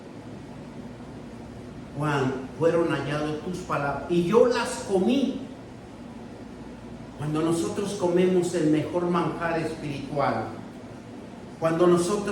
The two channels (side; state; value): both; identical; correlation 1.00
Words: Juan, fueron halladas tus palabras y yo las comí. Cuando nosotros comemos el mejor manjar espiritual, cuando